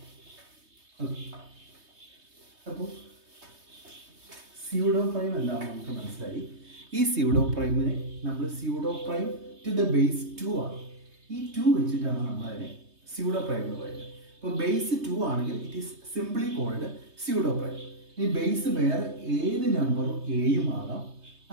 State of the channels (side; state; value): left; late; 3.2 ms